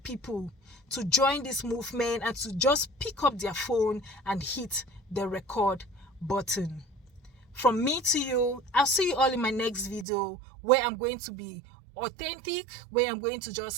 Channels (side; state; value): left; drops out; at 10.1 s